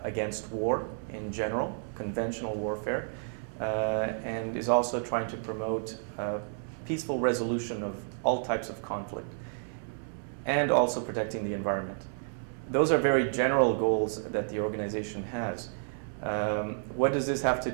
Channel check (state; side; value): silent; left; 57 dB below the other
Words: against war in general, conventional warfare, and is also trying to promote peaceful resolution of all types of conflict, and also protecting the environment. Those are very general goals that the organization has. What does this have to